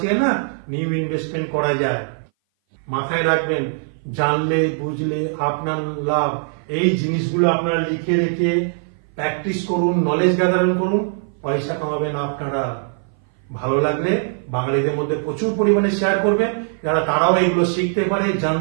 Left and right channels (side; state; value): left; silent; 59 dB below the other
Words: না নিউ ইনভেস্টমেন্ট করা যায়। মাথায় রাখবেন, জানলে বুঝলে আপনার লাভ। এই জিনিসগুলো আপনারা লিখে রেখে প্র্যাকটিস করুন, নলেজ গ্যাদারিং করুন, পয়সা কামাবেন আপনারা। ভালো লাগলে বাঙালিদের মধ্যে প্রচুর পরিমাণে শেয়ার করবেন, যারা তারাও এগুলো শিখতে পারে,